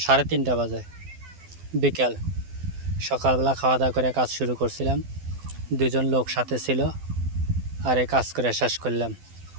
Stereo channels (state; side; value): late; left; 12 ms